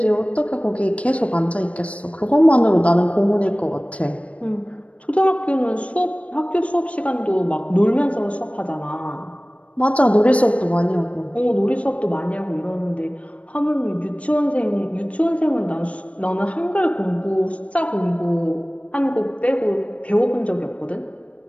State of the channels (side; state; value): right; late; 0.064 ms